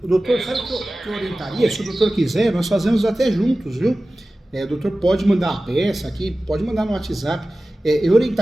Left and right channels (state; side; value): normal; both; correlation 0.96